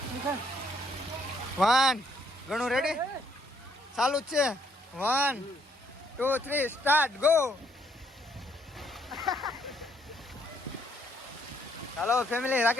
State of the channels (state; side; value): normal; both; correlation 0.69